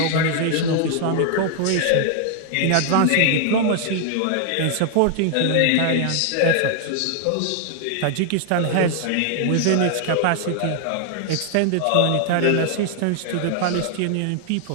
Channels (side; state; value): both; different; correlation 0.00